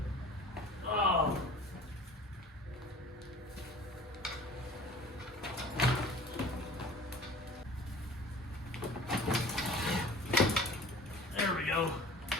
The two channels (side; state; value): both; normal; correlation 0.45